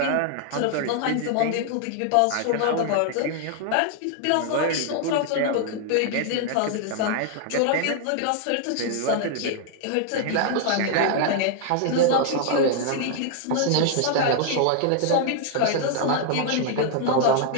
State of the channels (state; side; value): different; both; correlation 0.00